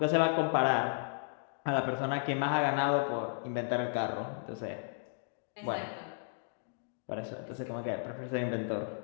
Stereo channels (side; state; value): right; silent; digital silence